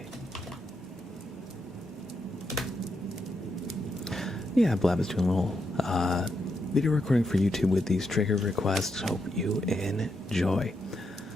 Yeah, Blab is doing a little video recording for YouTube with these trigger requests. Hope you enjoy.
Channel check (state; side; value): normal; both; correlation 0.82